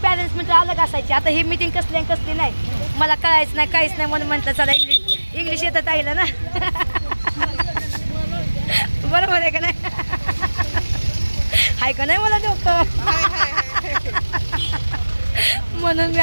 पॅरेंट्स मित्र अलग असायची. आता ही मीटिंग कसली नाही मला कळायचं नाही काहीच नाही म्हणून म्हटलं चला इंग्लिश येतं ताईला ना. बरोबर आहे का नाही. आहे का नाही मला डोकं. म्हणून मी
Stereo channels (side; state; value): both; inverted; correlation -1.00